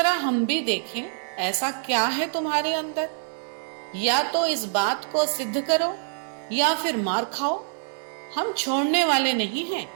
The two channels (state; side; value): silent; left; 61 dB below the other